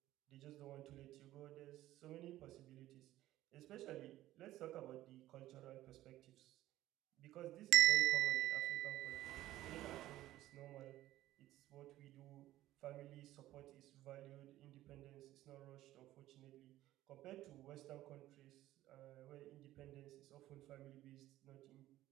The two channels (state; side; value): quieter; left; 14.9 dB